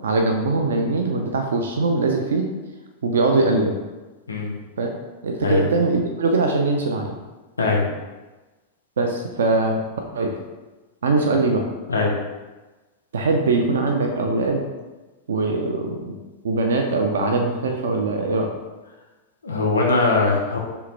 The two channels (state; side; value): inverted; both; correlation -0.40